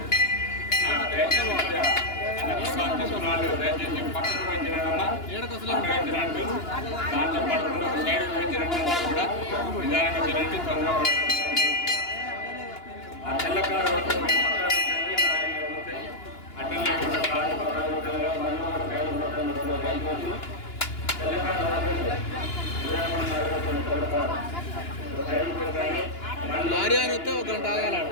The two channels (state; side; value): late; right; 2.9 ms